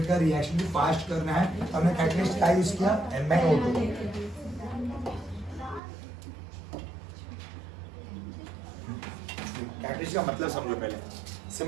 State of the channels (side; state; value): left; drops out; at 5.8 s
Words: का रिएक्शन भी फास्ट करना है तो हमने कैटलिस्ट का यूज किया, MnO2। कैटलिस्ट का मतलब समझो पहले,